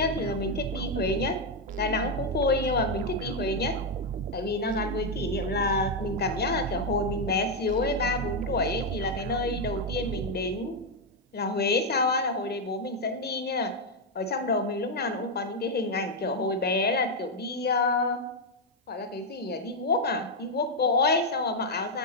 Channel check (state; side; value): normal; both; correlation 0.02